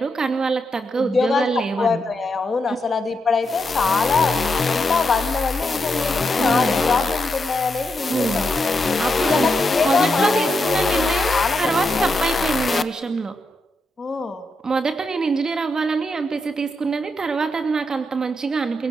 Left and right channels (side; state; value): both; normal; correlation 0.84